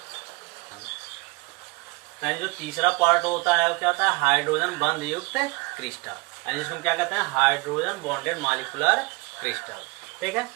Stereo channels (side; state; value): left; quieter; 26.5 dB